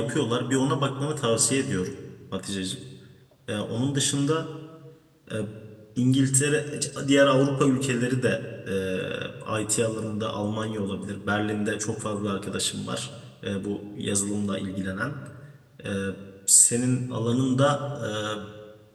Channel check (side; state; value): both; identical; correlation 1.00